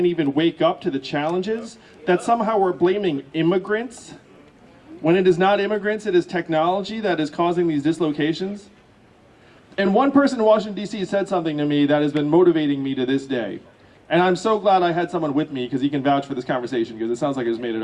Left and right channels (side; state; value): both; identical; correlation 1.00